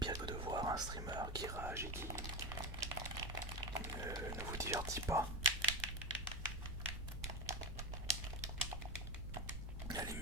que de voir un streamer qui rage et qui ne vous divertit pas. Allez,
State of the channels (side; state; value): right; noise; rumble, 7 dB below the sound